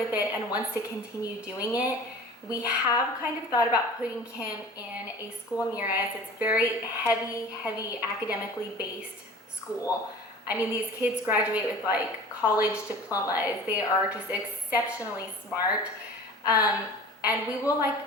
it and wants to continue doing it. We have kind of thought about putting him in a school near us. It's very heavy academically based school. I mean, these kids graduate with like college diplomas. They are just exceptionally smart. And we will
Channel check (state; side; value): normal; both; correlation 0.41